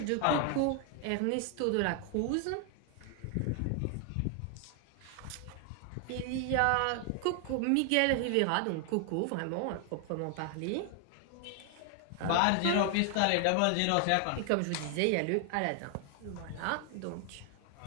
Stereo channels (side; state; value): both; different; correlation 0.00